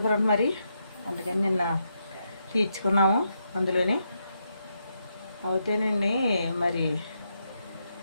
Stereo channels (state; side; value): inverted; both; correlation -0.81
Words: ఫ్రెండ్, మరి అందుకని నిన్న తీర్చుకున్నాము. అందులోనే అవుతేనండి మరి